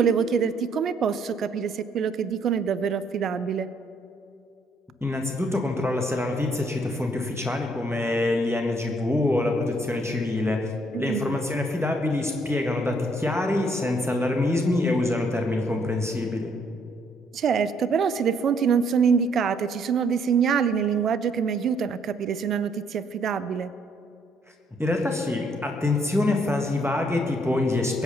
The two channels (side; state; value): both; normal; correlation 0.68